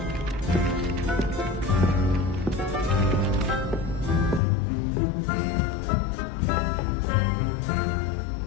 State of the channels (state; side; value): drops out; right; at 4.4 s